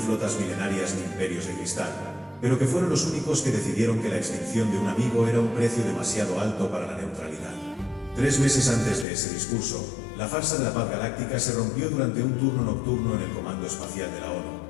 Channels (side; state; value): right; drops out; at 9.1 s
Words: milenarias ni imperios de cristal, pero que fueron los únicos que decidieron que la extinción de un amigo era un precio demasiado alto para la neutralidad. 3 meses antes de ese discurso, la farsa de la paz galáctica se rompió durante un turno nocturno en el Comando Espacial de la